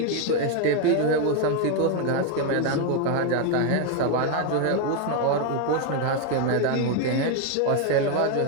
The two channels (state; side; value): different; both; correlation 0.01